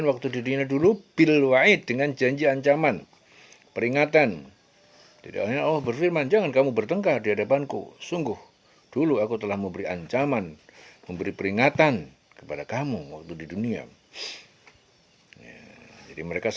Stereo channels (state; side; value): identical; both; correlation 1.00